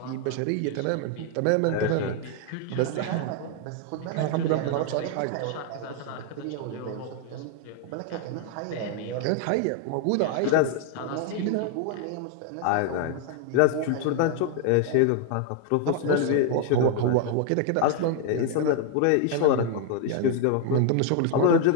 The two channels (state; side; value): different; both; correlation 0.00